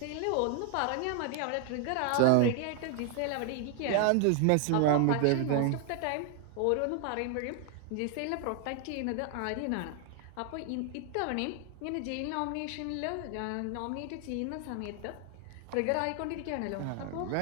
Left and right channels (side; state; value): both; different; correlation 0.00